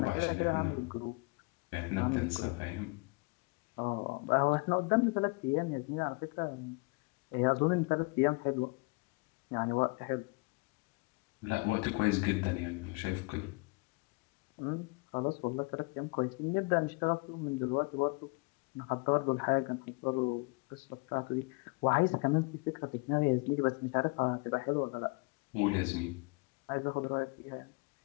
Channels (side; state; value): right; quieter; 29.2 dB